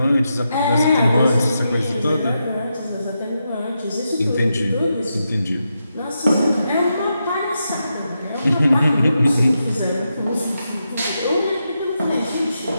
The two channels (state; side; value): inverted; both; correlation -0.86